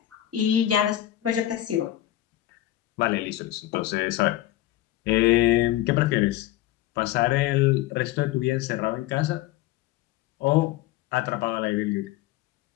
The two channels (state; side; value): quieter; right; 14.5 dB